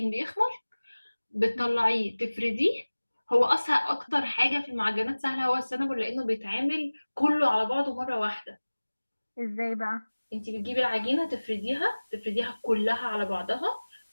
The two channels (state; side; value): inverted; both; correlation -1.00